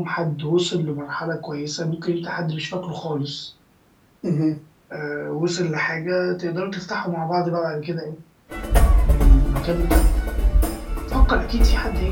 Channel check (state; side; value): identical; both; correlation 1.00